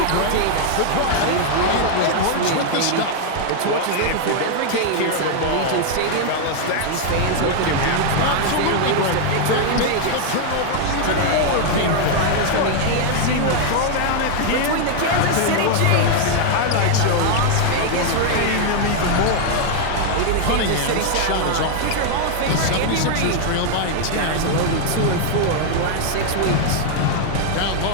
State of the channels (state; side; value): different; both; correlation 0.00